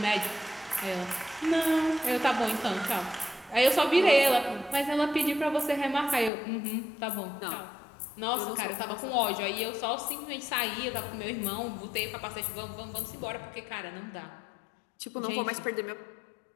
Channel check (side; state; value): right; drops out; at 6.3 s